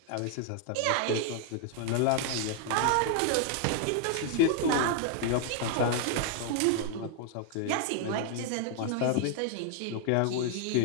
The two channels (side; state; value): both; different; correlation 0.00